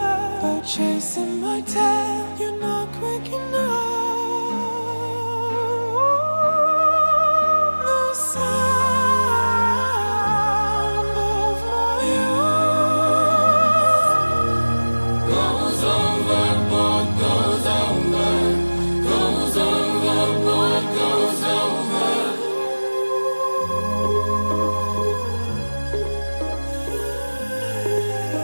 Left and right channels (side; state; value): both; inverted; correlation -1.00